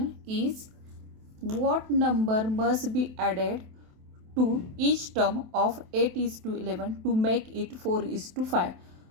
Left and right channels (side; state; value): left; late; 27 ms